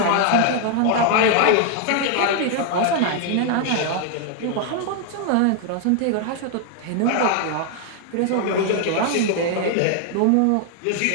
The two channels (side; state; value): both; different; correlation 0.00